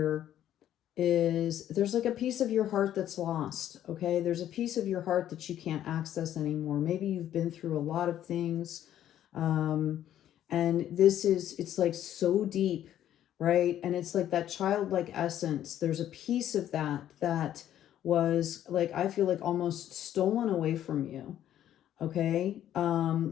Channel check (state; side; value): quieter; right; 11.4 dB